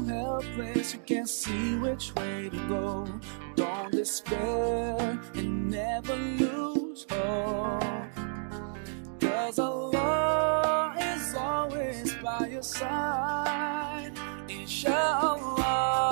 helpless, you can't see which way to go. Don't despair and never lose hope, 'cause Allah is always by your side. Inch'Allah,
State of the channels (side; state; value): left; silent; 57 dB below the other